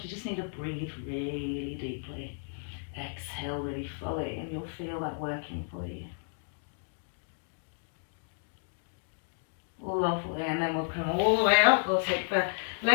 you just need to breathe really deeply. Exhale really fully, and you'll feel that working for you. Lovely, and then we'll come all the way up. We'll take the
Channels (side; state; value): right; silent; digital silence